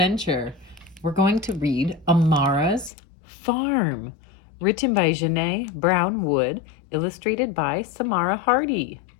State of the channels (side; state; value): right; drops out; at 2.9 s